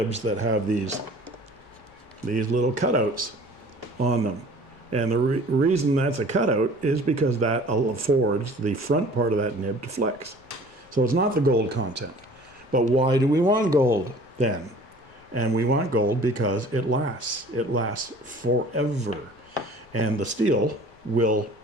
that have these little cutouts on them. And the reason that's a cutout is because that affords the front part of that nib to flex. So it's not the gold content. But why do we want gold then? And we want gold because it lasts. It lasts forever. And the steel will,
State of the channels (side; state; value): left; noise; rumble, 29 dB below the sound